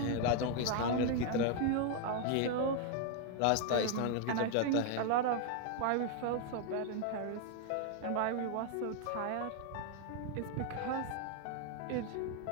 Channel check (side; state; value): both; different; correlation 0.00